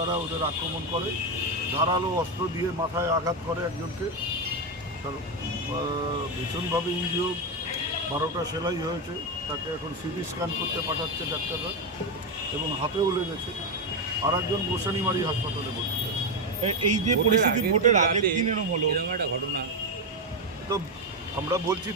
ওদের আক্রমণ করে, ধারালো অস্ত্র দিয়ে মাথায় আঘাত করে একজনকে। তার ভীষণভাবে ইনজিওর, 12টা সেলাই হয়েছে। তাকে এখন সিটি স্ক্যান করতে পাঠাচ্ছে ডাক্তাররা, এবং হাতেও লেগেছে। আর একজন গোসানিমারি হাসপাতালে ভর্তি আছে। এই যে পরিস্থিতি ভোটের আগের দিন এরকম হলো, এরকম একটা ঘটনা। তো আমরা বলছি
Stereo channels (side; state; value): both; normal; correlation 0.09